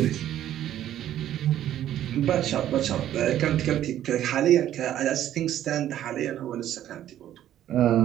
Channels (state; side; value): quieter; left; 11.8 dB